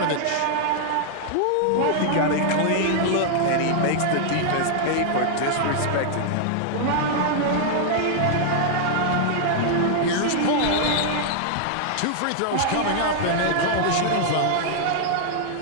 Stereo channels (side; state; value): both; different; correlation -0.01